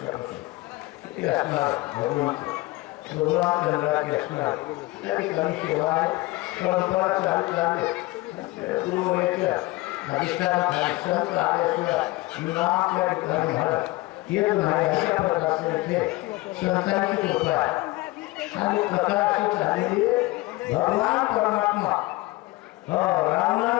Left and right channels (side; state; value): right; quieter; 21.0 dB